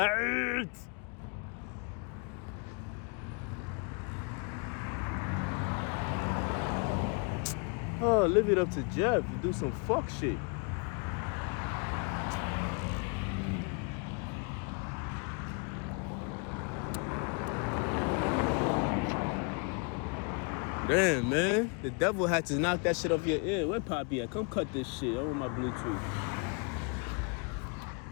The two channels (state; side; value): quieter; right; 35.8 dB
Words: Oh, leave it up to Jeff to do some fuck shit. Damn, man. The devil had to knock that shit off your ear. Where Poppy at? Come cut this shit. I want my Bluetooth.